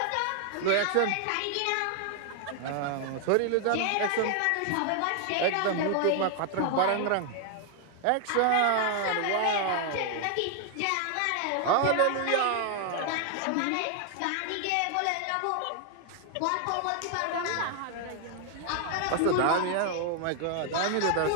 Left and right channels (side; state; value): both; different; correlation 0.00